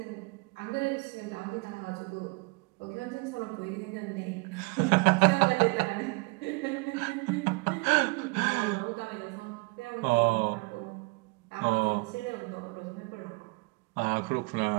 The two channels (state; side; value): quieter; left; 29.5 dB